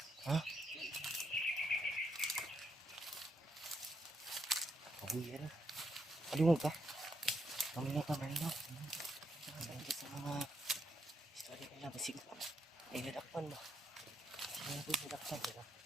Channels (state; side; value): normal; both; correlation 0.77